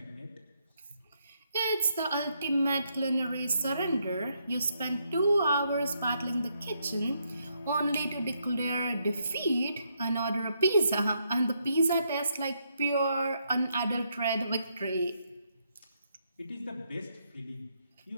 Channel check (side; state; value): both; inverted; correlation -0.77